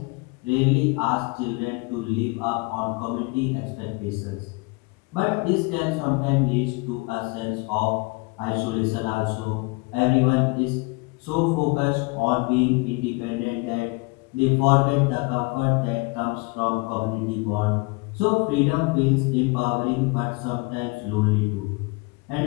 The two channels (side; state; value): right; quieter; 27.3 dB